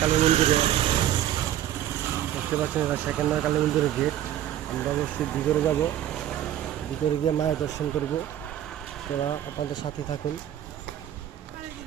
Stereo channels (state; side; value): quieter; left; 11.8 dB